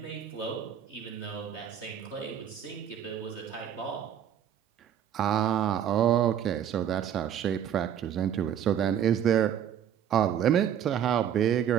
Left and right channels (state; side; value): quieter; left; 9.5 dB